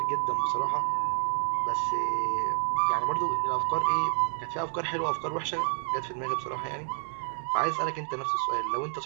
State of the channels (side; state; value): left; silent; 58 dB below the other